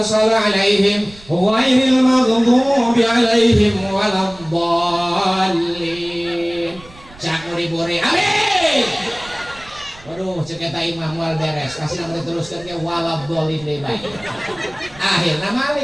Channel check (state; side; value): noise; right; rumble, 22 dB below the sound